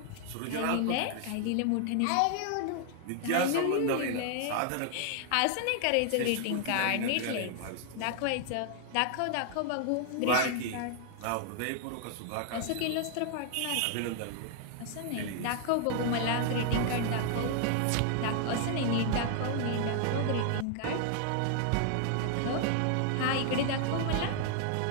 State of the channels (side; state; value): both; different; correlation 0.00